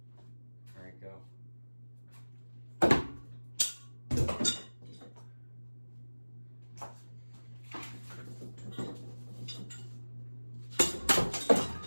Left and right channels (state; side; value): inverted; both; correlation -1.00